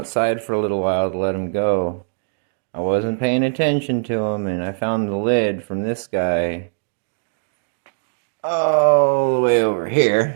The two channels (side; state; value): left; silent; digital silence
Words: for a little while to let them go. I wasn't paying attention to them, and I found the lid from this guy all the way over